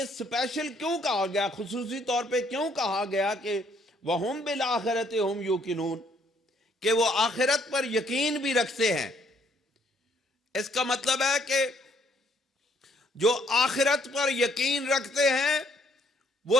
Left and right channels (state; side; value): normal; both; correlation 0.66